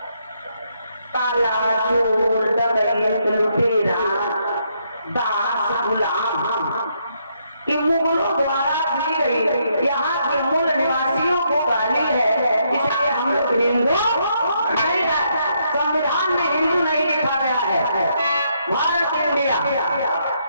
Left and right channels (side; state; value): both; inverted; correlation -0.75